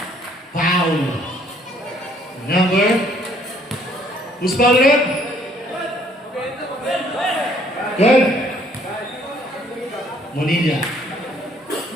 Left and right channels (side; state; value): both; normal; correlation 0.63